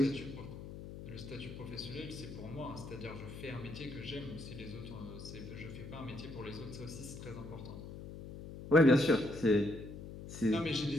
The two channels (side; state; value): left; noise; hum, 11 dB below the sound